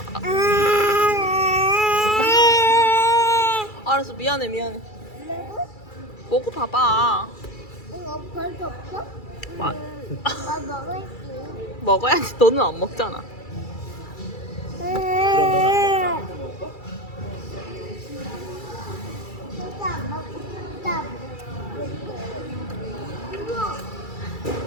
알았어 미안해 먹어봐봐. 이거 벌써 없어? 아. 나 먹을게. 먹어야지. 너는 안 먹잖아. 진짜 안 먹고 싶다.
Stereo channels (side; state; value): right; late; 2.3 ms